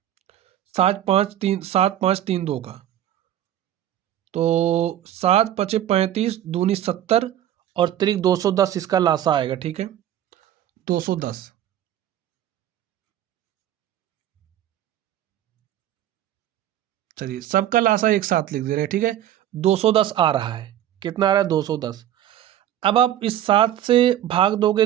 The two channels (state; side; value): quieter; left; 11.8 dB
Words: 7 5 3 का, तो 7 पचे 35 दूनी 70 और त्रिक 210 इसका लासा आएगा। ठीक है, 210। चलिए सबका लासा एक साथ लिख दे रहे हैं। ठीक है, 210 आ रहा है। कितना आ रहा है, 210। अब आप इस 7 से भाग दोगे